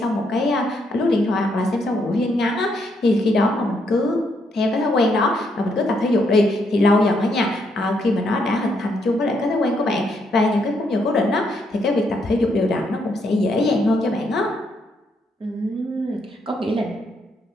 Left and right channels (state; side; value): normal; both; correlation 0.75